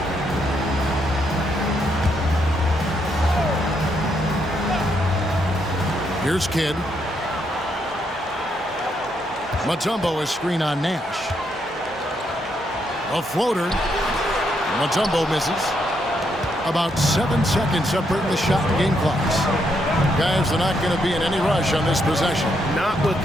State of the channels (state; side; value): normal; both; correlation 0.77